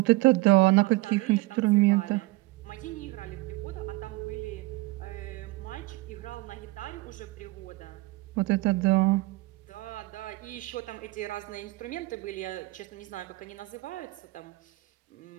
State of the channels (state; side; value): quieter; left; 20.9 dB